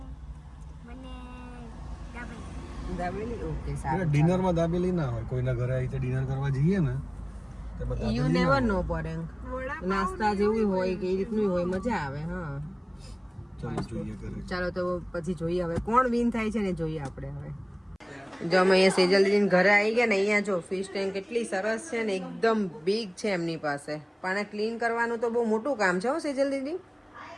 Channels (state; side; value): identical; both; correlation 1.00